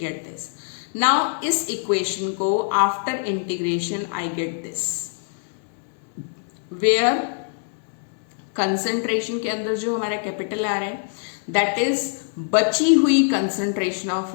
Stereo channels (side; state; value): right; silent; 63 dB below the other